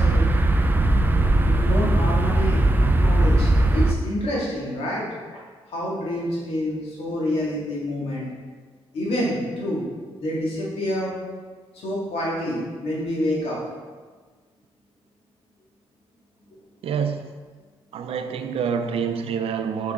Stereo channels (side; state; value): both; normal; correlation 0.82